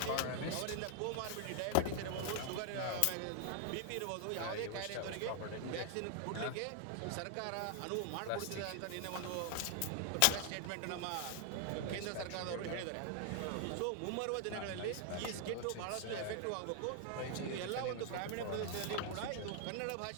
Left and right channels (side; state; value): both; different; correlation 0.00